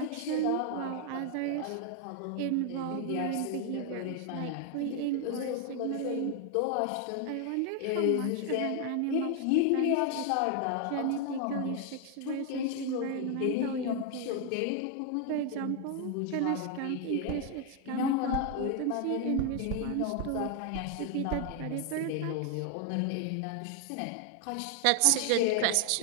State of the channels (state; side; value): different; both; correlation 0.00